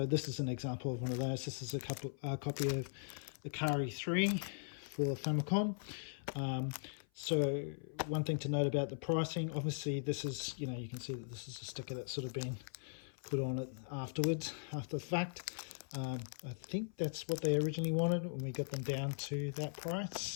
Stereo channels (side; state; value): right; silent; 51 dB below the other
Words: this is an example of one of those. This is a copy of Ikari 3 for Famicom. So one thing to note about the pricing, obviously this is, you know, you can see that this is a sticker that's sort of been put on it afterwards, after the fact. I think that's what they originally wanted when we got them down to that